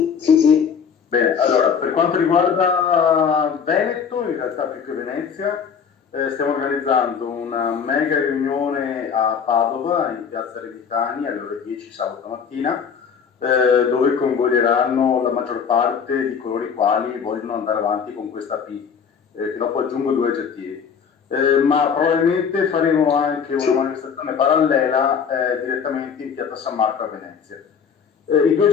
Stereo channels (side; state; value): right; quieter; 6.8 dB